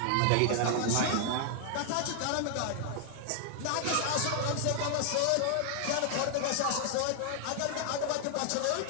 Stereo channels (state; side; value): different; both; correlation 0.00